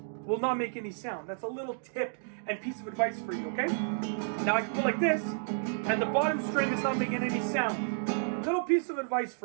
will not make any sound. That's a little tip and piece of advice for you, okay? Now I can go like this and the bottom string is not making any sound. Little piece of advice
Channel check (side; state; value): left; silent; digital silence